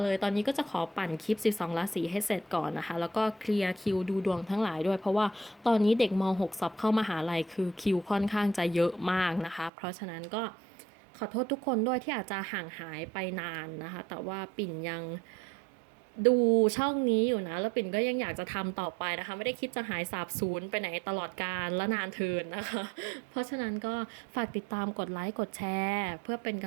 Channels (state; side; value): drops out; left; at 9.7 s